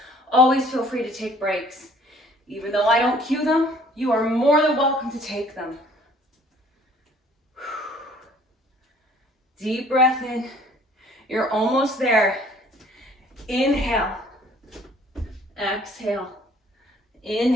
always feel free to take breaks. Even though I don't cue them, you are more than welcome to take them. Deep breath in. You're almost there. Inhale. Exhale.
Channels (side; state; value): both; normal; correlation 0.56